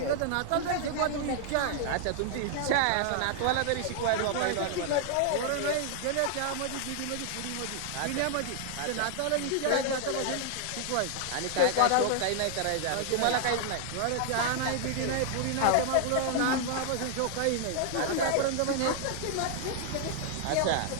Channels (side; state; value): both; different; correlation 0.00